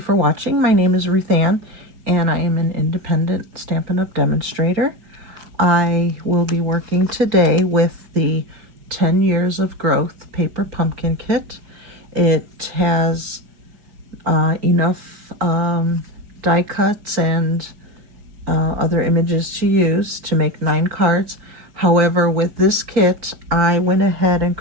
for watching. My name is Ruth Ann, and I am an independent Stampin' Up! Demonstrator. I will be working today with the 10 Years of Growth Paper Pumpkin Kit. It has enough die cuts and other images to use to make 9 cards. However, with this kit, I went ahead and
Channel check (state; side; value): late; left; 4.9 ms